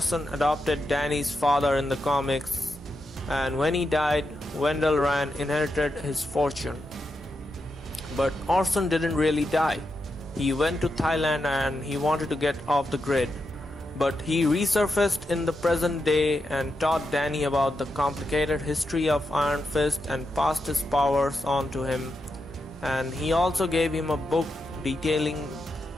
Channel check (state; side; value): normal; both; correlation 0.86